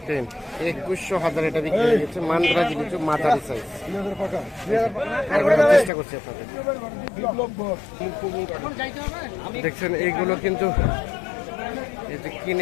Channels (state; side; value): drops out; right; at 5.9 s